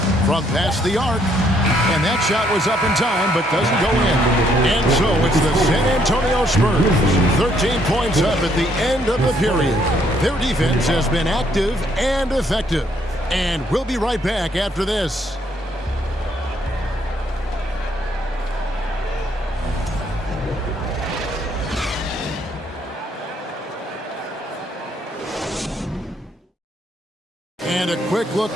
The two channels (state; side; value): normal; both; correlation 0.69